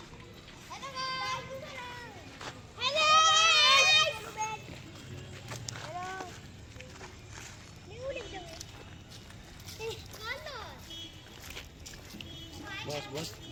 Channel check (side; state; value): both; identical; correlation 1.00